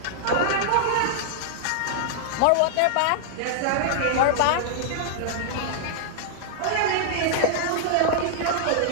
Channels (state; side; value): different; both; correlation -0.01